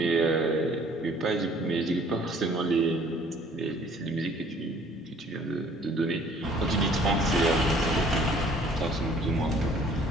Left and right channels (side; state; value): both; normal; correlation 0.57